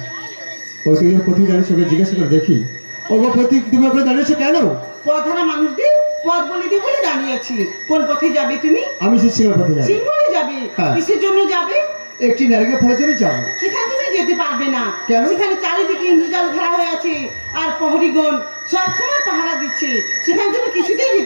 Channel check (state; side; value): inverted; both; correlation -1.00